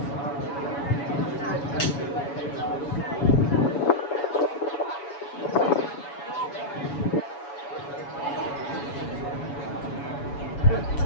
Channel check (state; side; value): late; right; 7.1 ms